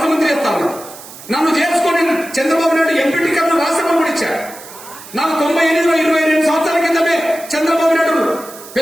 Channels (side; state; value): right; noise; hiss, 17 dB below the sound